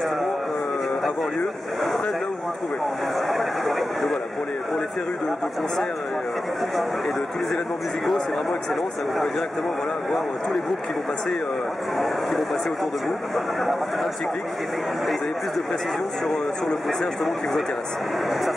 avoir lieu près de là où vous vous trouvez. Donc voilà, pour les férus de concerts et de tous les événements musicaux, c'est vraiment excellent. Ça vous permet directement voir tous les groupes qui vont passer autour de vous. Un petit clic et vous avez plus de précision sur le concert justement qui vous intéresse.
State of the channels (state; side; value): normal; both; correlation 0.93